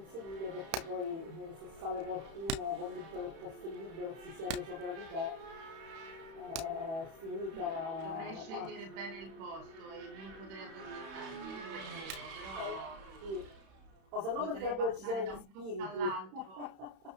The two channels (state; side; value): late; left; 31 ms